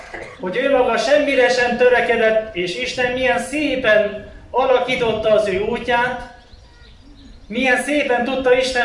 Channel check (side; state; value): both; identical; correlation 1.00